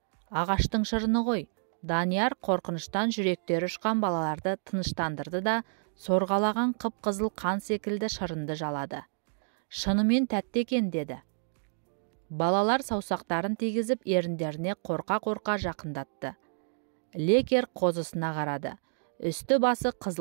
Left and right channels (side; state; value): left; silent; digital silence